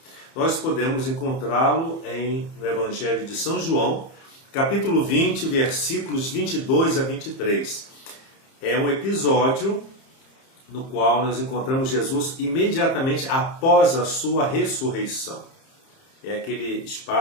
Nós podemos encontrá-lo no Evangelho de São João, capítulo 20, versículos 22 a 23. É um episódio no qual nós encontramos Jesus imediatamente após a sua ressurreição. É aquele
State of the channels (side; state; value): right; late; 30 ms